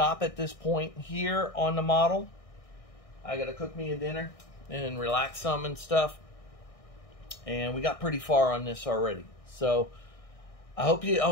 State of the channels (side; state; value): right; late; 1.6 ms